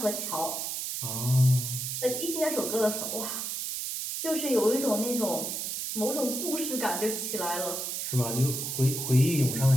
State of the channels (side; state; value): right; noise; hiss, 3 dB below the sound